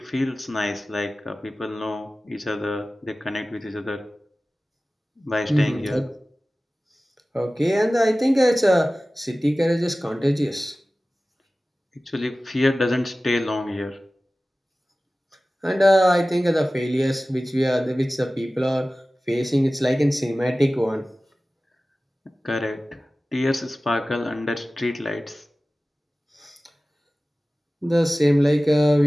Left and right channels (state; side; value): normal; both; correlation 0.97